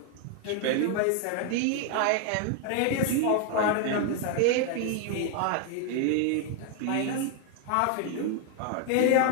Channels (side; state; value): both; different; correlation 0.00